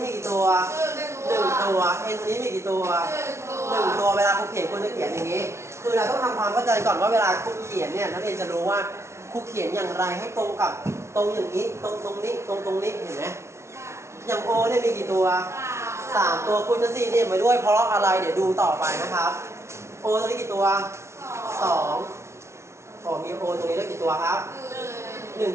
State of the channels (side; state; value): left; late; 0.13 ms